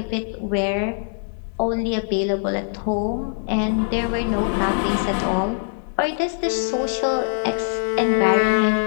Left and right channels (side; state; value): right; silent; digital silence